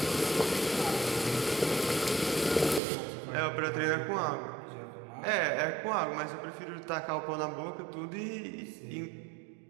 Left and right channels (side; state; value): left; drops out; at 2.8 s